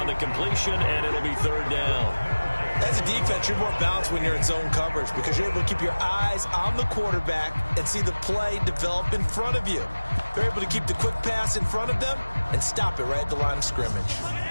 the completion, and it'll be third down. As a defense, you're more balanced when you're in zone coverage because you're able to keep your eyes on the quarterback and see the play develop in front of you. They're able to keep the quick pass in front of them and stop it right at the line of scrimmage.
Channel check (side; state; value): both; inverted; correlation -1.00